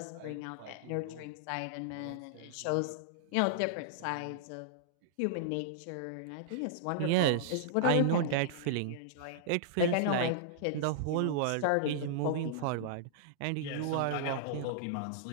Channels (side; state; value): both; different; correlation -0.01